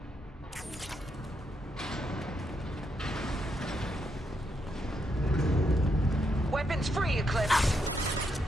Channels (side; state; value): both; normal; correlation 0.80